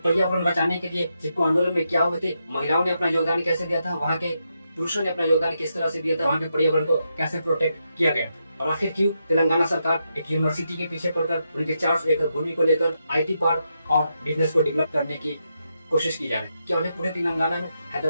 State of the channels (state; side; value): inverted; both; correlation -0.83